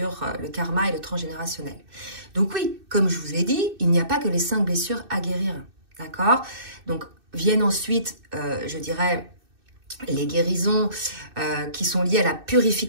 le karma et le transgénérationnel. Donc oui, comme je vous ai dit, il n'y a pas que les 5 blessures à guérir, d'accord? Donc viennent ensuite, je dirais, les guérisons qui sont liées à la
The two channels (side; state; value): left; late; 2.6 ms